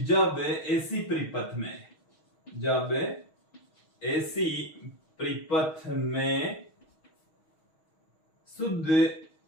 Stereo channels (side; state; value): right; late; 6.3 ms